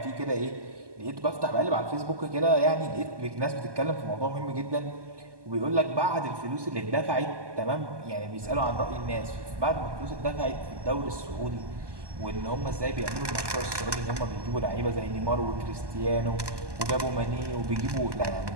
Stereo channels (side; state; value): left; late; 1.2 ms